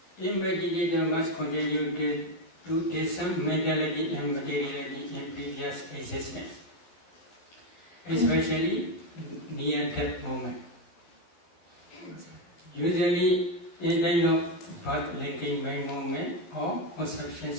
a meditator must continue to discern mentality and materiality in previous existence, especially near that moment. Usually in kind of birth linking by moment or conception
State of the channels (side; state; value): right; late; 11 ms